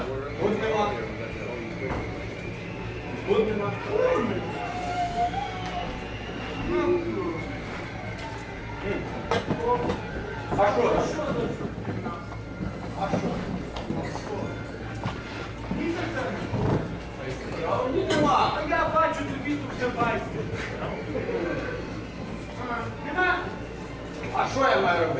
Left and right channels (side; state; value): both; identical; correlation 1.00